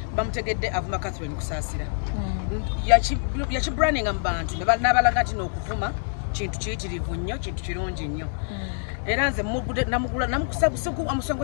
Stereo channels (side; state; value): right; silent; digital silence